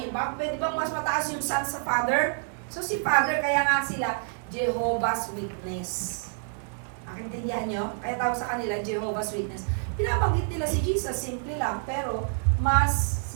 Pwede bang mas mataas yung Son sa Father? So si Father, kaya nga sila Jehovah's Witness. Nakintindihan nyo? Kaya tawag sa kanila Jehovah's Witness. Pinabanggit nila si Jesus, simple lang. Pero mas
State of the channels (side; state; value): left; silent; 60 dB below the other